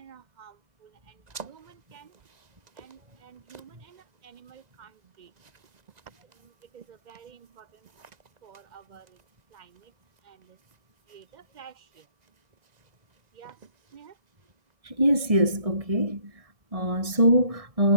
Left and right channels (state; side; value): late; left; 1.6 ms